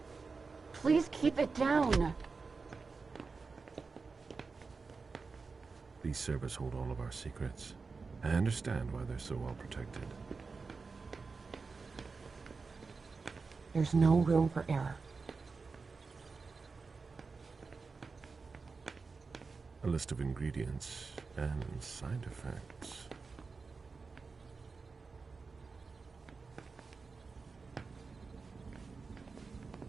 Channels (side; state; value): left; quieter; 4.5 dB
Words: Please keep it down. These servers hold all of our secrets. I understand why they're so well protected. There's no room for error. A list of ingredients and side effects.